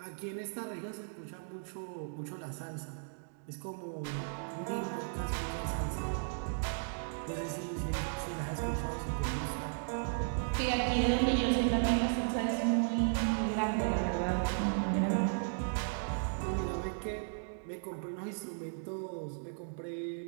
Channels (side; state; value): left; silent; digital silence